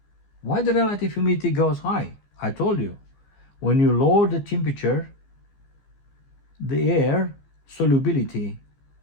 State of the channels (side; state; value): right; late; 15 ms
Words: Why the relative humidity goes high? I told you, when you lower the temperature, the air solubility